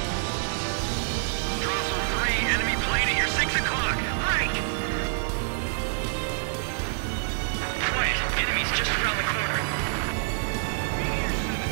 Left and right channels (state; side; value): silent; left; digital silence